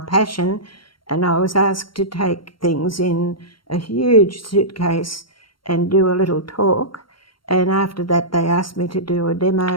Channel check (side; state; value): right; late; 0.73 ms